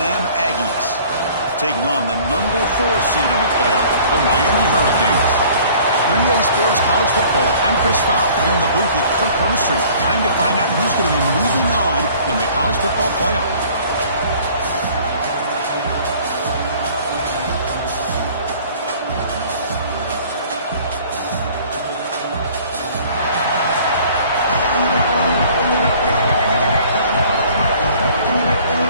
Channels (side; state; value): both; inverted; correlation -0.52